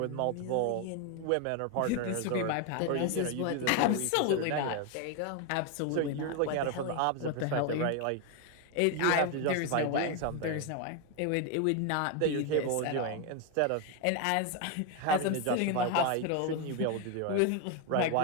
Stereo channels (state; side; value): different; both; correlation 0.01